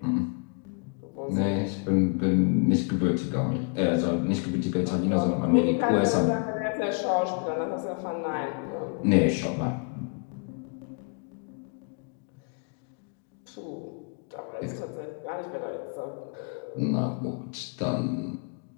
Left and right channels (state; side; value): quieter; right; 38.9 dB